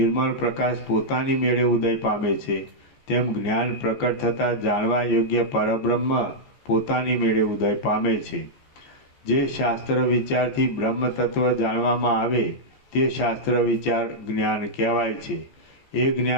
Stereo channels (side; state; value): right; late; 14 ms